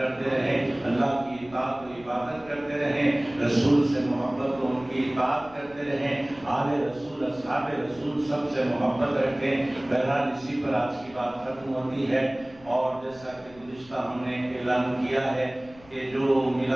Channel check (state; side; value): noise; left; rumble, 23 dB below the sound